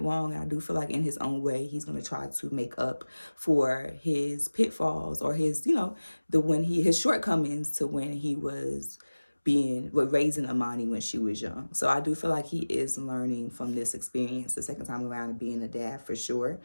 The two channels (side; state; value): both; inverted; correlation -1.00